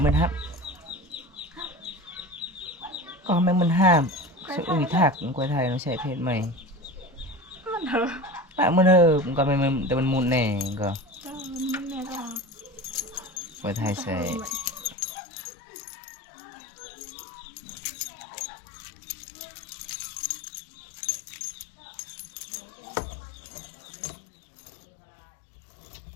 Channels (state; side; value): drops out; right; at 15.0 s